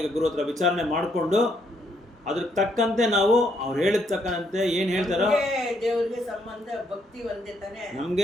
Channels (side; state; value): both; normal; correlation 0.72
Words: ಗುರು ಹತ್ರ ವಿಚಾರಣೆ ಮಾಡಿಕೊಂಡು ಅದ್ರ ತಕ್ಕಂತೆ ನಾವು ಅವ್ರು ಹೇಳಿದ ತಕ್ಕಂತೆ ಏನು ಹೇಳ್ತಾರೋ ದೇವರಿಗೆ ಸಂಬಂಧ ಭಕ್ತಿ ಒಂದೇ ತಾನೆ.